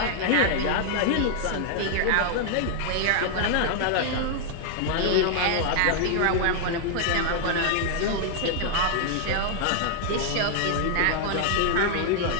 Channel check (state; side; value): different; both; correlation -0.01